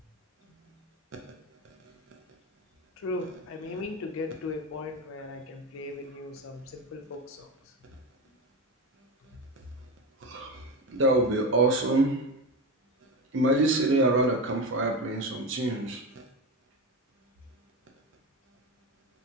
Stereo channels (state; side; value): normal; both; correlation 0.21